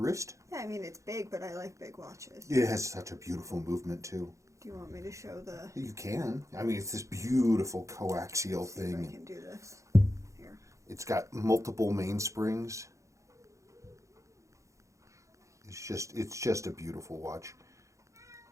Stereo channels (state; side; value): late; left; 0.15 ms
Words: Yeah, I mean, it's big, but I like big watches. It has such a beautiful movement, too. Do you want me to show the... You can. I mean, it's this beautiful coaxial See thing. if I can do this. Here. It's got multiple mainsprings. It's just a beautiful watch.